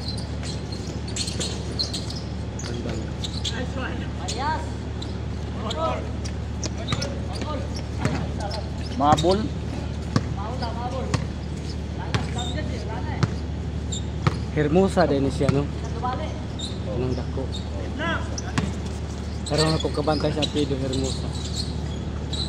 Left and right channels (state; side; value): noise; right; hum, 24 dB below the sound